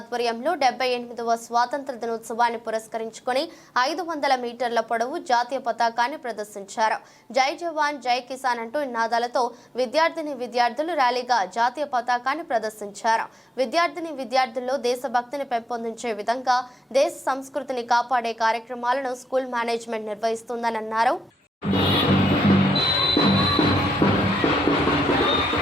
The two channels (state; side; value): normal; both; correlation 0.85